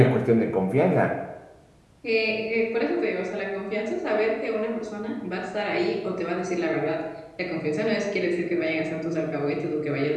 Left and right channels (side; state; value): both; identical; correlation 1.00